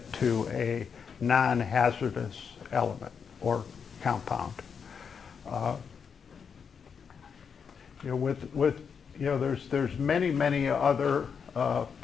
to a non-hazardous element or compound. There's many other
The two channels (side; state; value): right; quieter; 6.5 dB